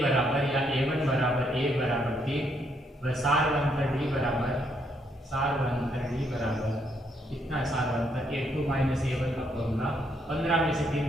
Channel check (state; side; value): normal; both; correlation 0.73